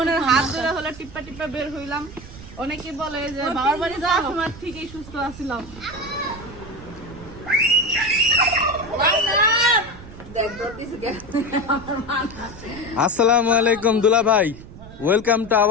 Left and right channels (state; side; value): noise; right; rumble, 16 dB below the sound